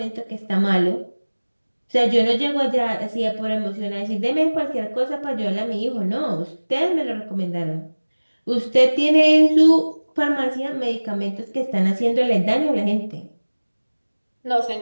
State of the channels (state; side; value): inverted; both; correlation -1.00